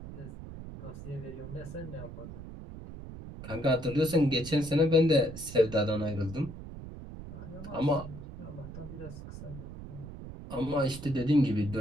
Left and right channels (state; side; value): noise; right; rumble, 12 dB below the sound